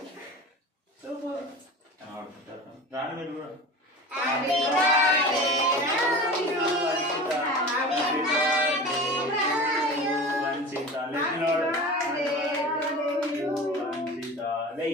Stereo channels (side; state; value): both; normal; correlation 0.34